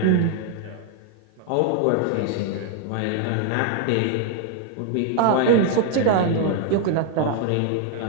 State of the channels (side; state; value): both; different; correlation 0.00